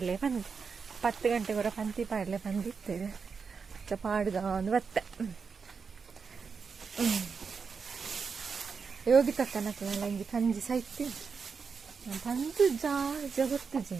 10 ಗಂಟೆಗೊರ ಪಂತಿ ಪಾಡ್ಲೆ ಬಂದಿತ್ತೇವೆ ಪಾಡ್ಗ ಒಂದು ಬತ್ತೆ ಯೋಗಿ ತಕ್ಕನಲ್ಲ ಹಿಂಗೆ ಕಂಜಿ ಸಾಯ್ತಿ ಬಂದು ಗೊತ್ತು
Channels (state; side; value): quieter; left; 5.5 dB